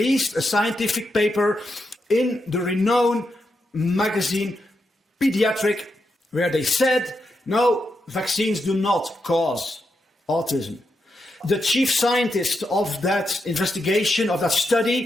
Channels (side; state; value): both; normal; correlation 0.84